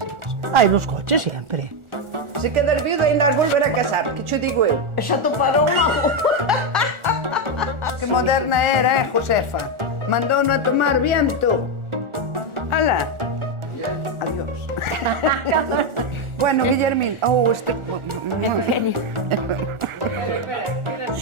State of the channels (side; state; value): left; late; 1.4 ms